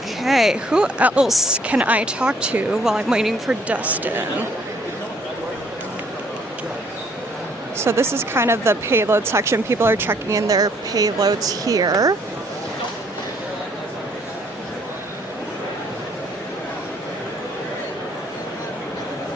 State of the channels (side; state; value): both; normal; correlation 0.64